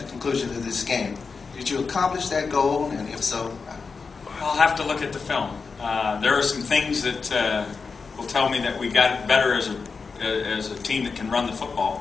the conclusion of this game. Did you accomplish that goal, and if so? I'll have to look at the film. There are some things that will tell me that we got better as a team that can run the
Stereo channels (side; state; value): right; quieter; 4.9 dB